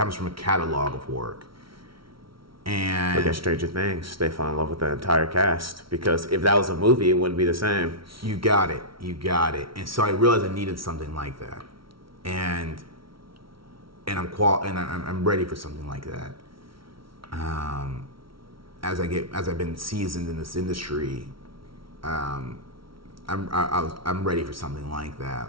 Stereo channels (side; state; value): left; late; 0.74 ms